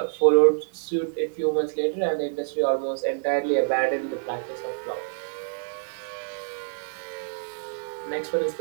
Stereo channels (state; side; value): silent; left; digital silence